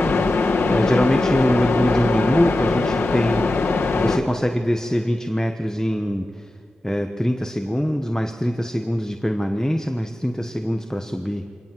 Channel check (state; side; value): normal; both; correlation 0.93